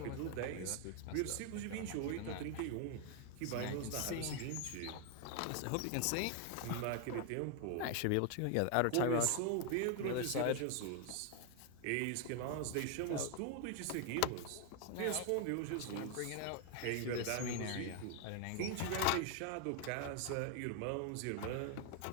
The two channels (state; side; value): different; both; correlation 0.00